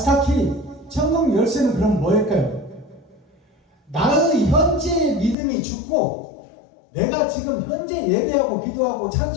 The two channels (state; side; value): drops out; right; at 5.4 s